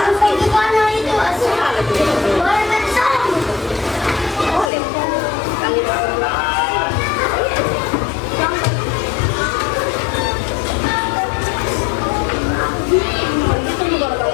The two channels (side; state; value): right; drops out; at 4.7 s